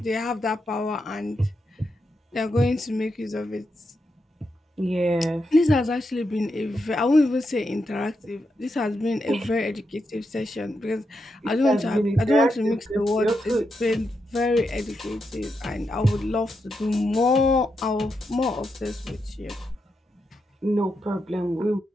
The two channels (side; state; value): both; normal; correlation 0.84